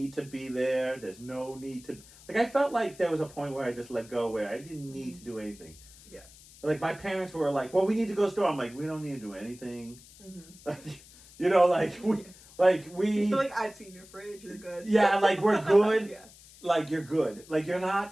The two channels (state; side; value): noise; left; hiss, 22 dB below the sound